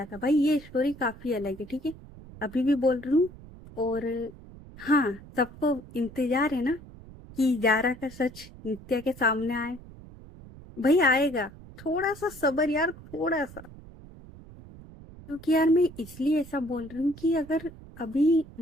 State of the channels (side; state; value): right; noise; rumble, 18 dB below the sound